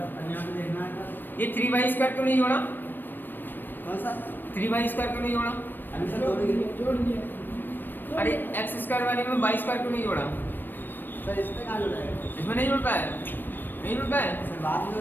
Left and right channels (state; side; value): late; right; 0.093 ms